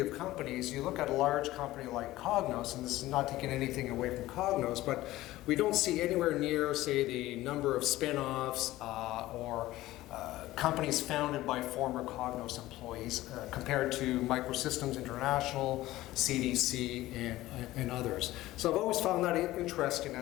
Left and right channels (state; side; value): quieter; right; 16.6 dB